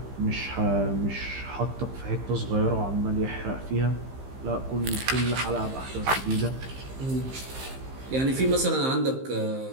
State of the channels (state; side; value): late; left; 15 ms